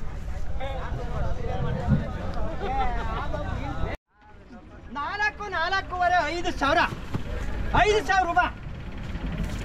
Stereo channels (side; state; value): both; identical; correlation 1.00